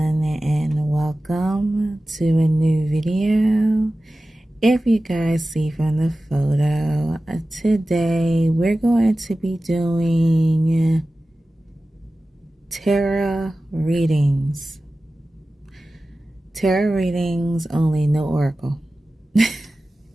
and welcome to a new video. If you guys see from the photo, today we're going to be doing tarot readings. Tarot readings only, no oracle.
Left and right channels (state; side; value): normal; both; correlation 0.95